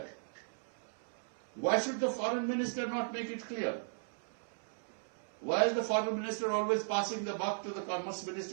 Why should the foreign minister not make it clear? Why is the foreign minister always passing the buck to the commerce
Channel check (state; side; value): silent; left; 53 dB below the other